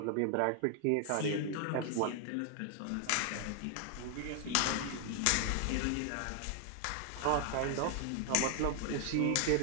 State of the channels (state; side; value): different; both; correlation 0.00